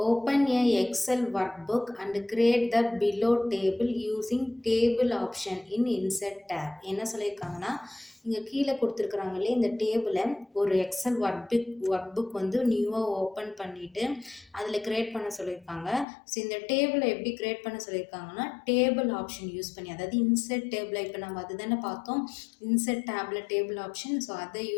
open a Excel workbook and create the below table using table option in insert tab. என்ன சொல்லியிருக்காங்கன்னா, இங்கே கீழே கொடுத்துருக்குறாங்க இல்லையா, இந்த டேபிளை ஒரு எக்ஸல் ஒர்க் புக் வந்து நியூவாக ஓப்பன் பண்ணிவிட்டு அதில் க்ரியேட் பண்ண சொல்லியிருக்காங்க. ஸோ இந்த டேபிளை எப்படி க்ரியேட் பண்ண சொல்லியிருக்காங்கன்னா, டேபிள் ஆப்ஷன் யூஸ் பண்ணி, அதாவது இன்சர்ட் டேபிளை இப்போ நம்ம அது தானே பார்த்தோம், insert table table option. So அதை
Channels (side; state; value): right; drops out; at 16.1 s